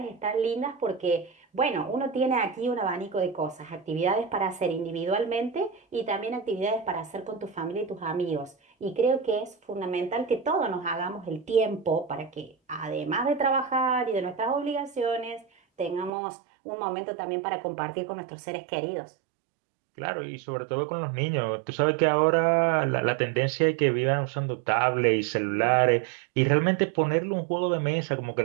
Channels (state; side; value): drops out; left; at 16.1 s